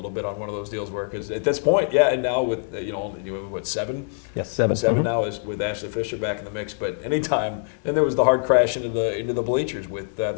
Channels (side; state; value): right; silent; digital silence